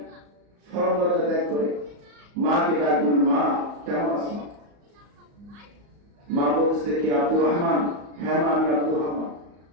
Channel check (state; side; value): late; left; 34 ms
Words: সরলতা ত্যাগ করে মাকে ডাকবেন, মা কেমন আছো? মা বলতেছে, কি আব্দুর রহমান? হ্যাঁ মা, আমি আব্দুর রহমান।